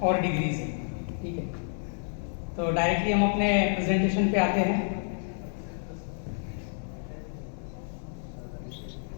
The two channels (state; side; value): silent; right; digital silence